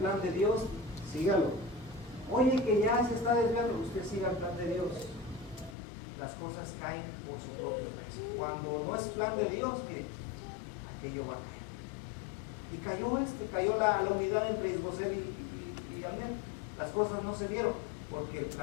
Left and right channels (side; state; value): right; drops out; at 5.8 s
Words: de Dios, sígalo. Oye, que ya se está desviando, usted siga el plan de Dios. Las cosas caen por su propio peso. Cuando no es plan de Dios, que aquello va a caer. Y cayó la unidad entre Isboset y Abner. Las cosas no se dieron porque el